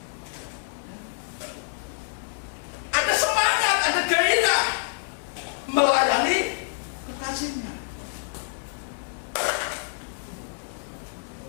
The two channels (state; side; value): silent; right; digital silence